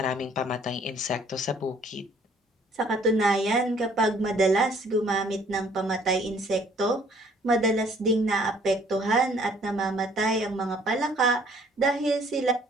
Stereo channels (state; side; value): normal; both; correlation 0.59